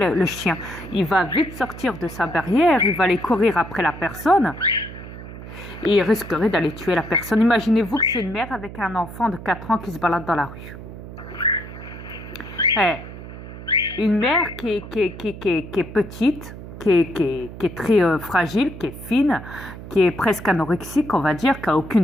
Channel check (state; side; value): noise; right; hum, 13 dB below the sound